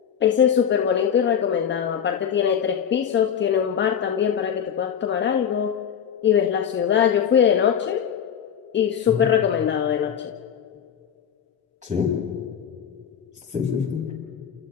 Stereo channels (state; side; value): quieter; right; 8.2 dB